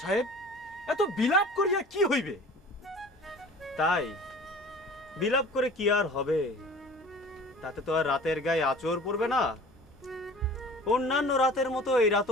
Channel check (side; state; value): both; normal; correlation 0.44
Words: সাহেব, এত বিলাপ করিয়া কি হইবে? তাই বিলাপ করে কি আর হবে? তাতে তো আর রাতের গায়ে আঁচড় পড়বে না। অন্যান্য রাতের মতো এই